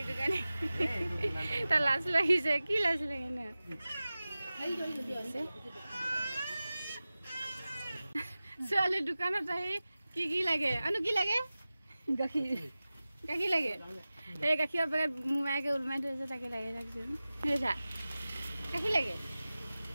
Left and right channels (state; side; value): inverted; both; correlation -0.97